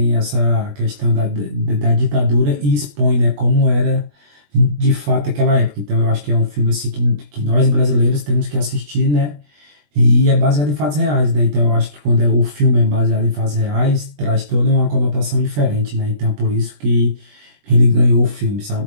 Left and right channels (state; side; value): late; left; 20 ms